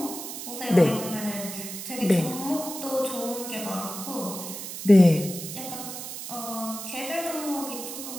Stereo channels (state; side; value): noise; right; hiss, 8 dB below the sound